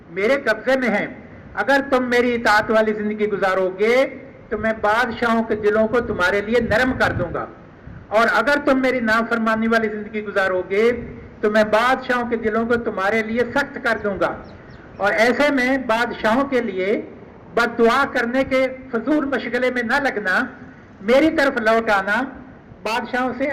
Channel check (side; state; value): both; identical; correlation 1.00